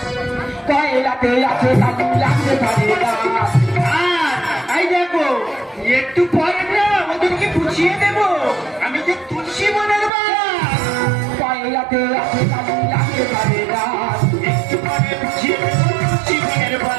পয়লাতে আছে কালি লাগতে পারে না এই দেখো একটু পরে না ওদেরকে বুঝিয়ে দেবো আমি যে তুলসী বনের বাস। পয়লাতে আছে কালি লাগতে পারে না একটু পরে বুঝিয়ে দেবো তুলসী বনের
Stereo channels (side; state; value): left; drops out; at 10.1 s